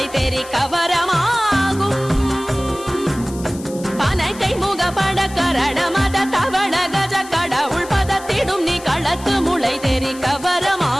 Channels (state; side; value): noise; left; hiss, 17 dB below the sound